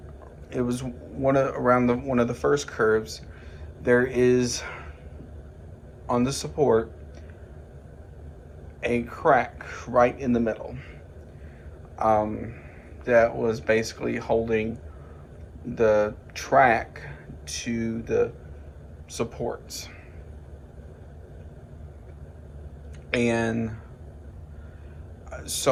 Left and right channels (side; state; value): both; identical; correlation 1.00